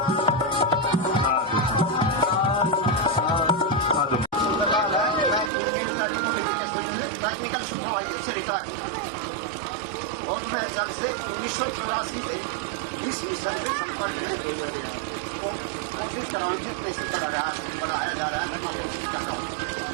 टेक्निकल सुपरवाइजर से रिटायर और मैं जब से 1984 से इस मिशन के संपर्क में कोशिश कर रहा हूँ कैसे बढ़ाया जा रहा है। मैं कोशिश कर रहा हूँ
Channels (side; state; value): left; drops out; at 5.5 s